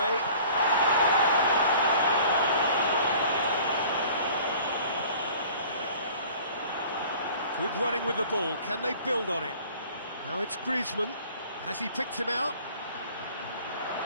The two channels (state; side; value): inverted; both; correlation -0.48